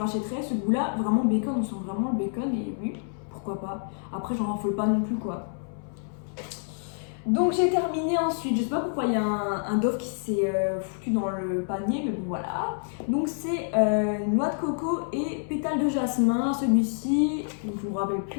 ce goût là, vraiment bacon, on sent vraiment le bacon et oui, pourquoi pas. Après j'en raffole pas non plus quoi. Donc j'ai terminé ensuite, je sais pas pourquoi il y a un Dove qui s'est foutu dans le panier, mais bon voilà. Donc c'est noix de coco et pétales de jasmin, celui-ci, donc je me rappelle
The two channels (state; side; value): silent; right; 60 dB below the other